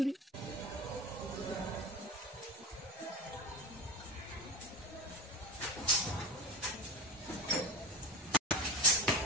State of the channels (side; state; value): both; normal; correlation 0.28